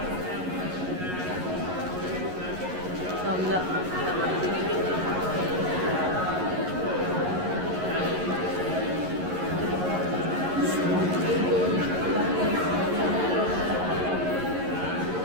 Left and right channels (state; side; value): late; left; 11 ms